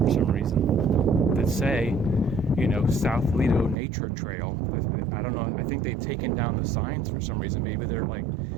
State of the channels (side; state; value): left; drops out; at 3.8 s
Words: for some reason that say, South Lido Nature Trail. I don't know. I think they've taken down the signs for some reason. Maybe they're like